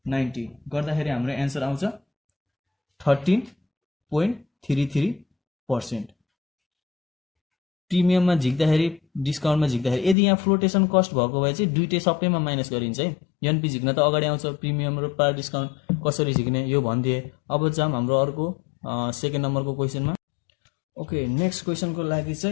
90 गर्दाखेरि हाम्रो एन्सर आउँछ 13.33%। प्रिमियममा झिक्दाखेरि डिस्काउन्टमा झिक्दाखेरि यदि यहाँ फ्लोटेसन कस्ट भएको भए चाहिँ दुइटै सबैमा माइनस गरिन्छ है। एनपी झिक्न त अगाडि आउँछ, प्रिमियम र पार डिस्काउन्ट कसरी झिक्ने यो भनिदिए। अब जाम हाम्रो अर्को 2nd नम्बरको क्वेसनमा। ओके, नेक्स्ट क्वेसनको लागि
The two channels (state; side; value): drops out; right; at 10.2 s